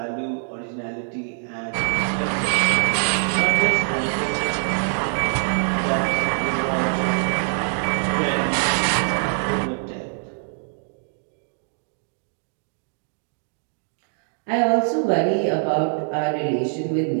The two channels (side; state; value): left; silent; digital silence